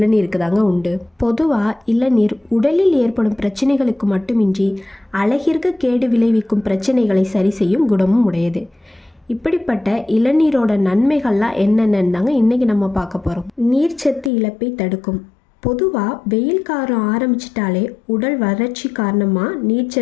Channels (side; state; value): right; drops out; at 14.3 s